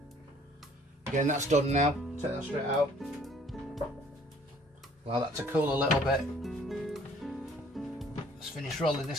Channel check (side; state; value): both; normal; correlation 0.58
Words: Again, that's done now. Take that straight out. Allow that to cool a little bit. Let's finish rolling